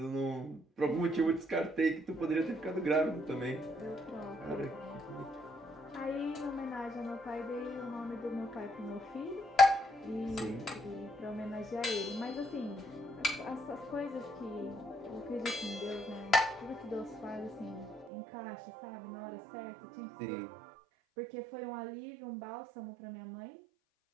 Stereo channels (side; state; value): left; drops out; at 18.1 s